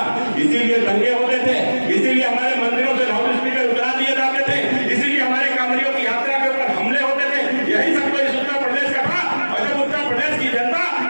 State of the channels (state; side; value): inverted; both; correlation -1.00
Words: इसीलिए दंगे होते थे, इसीलिए हमारे मंदिरों से लाउड स्पीकर उतरा दिए जाते थे, इसीलिए हमारे कांवरियों की यात्रा के ऊपर हमले होते थे। यही सब तो इस उत्तर प्रदेश का था। और जब उत्तर प्रदेश की जनता